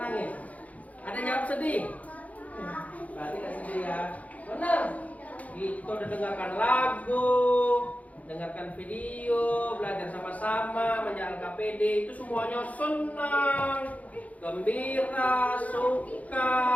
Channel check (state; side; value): late; right; 0.071 ms